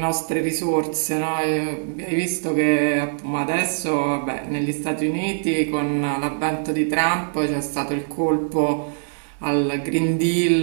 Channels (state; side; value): silent; left; digital silence